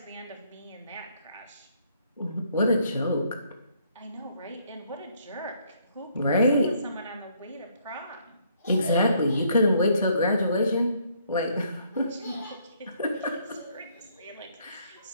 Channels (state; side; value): inverted; both; correlation -0.67